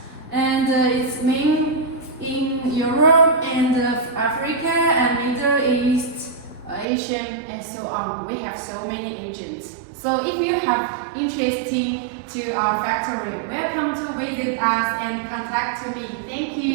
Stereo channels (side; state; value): left; drops out; at 6.9 s